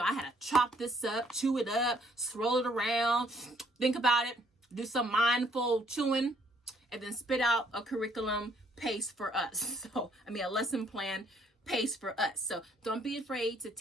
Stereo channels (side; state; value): both; normal; correlation 0.65